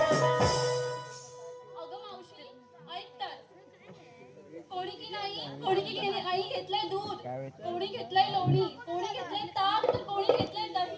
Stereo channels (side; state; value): both; identical; correlation 1.00